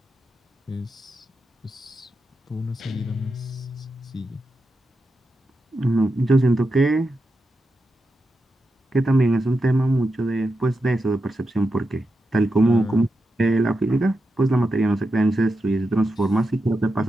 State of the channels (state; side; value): normal; both; correlation 0.88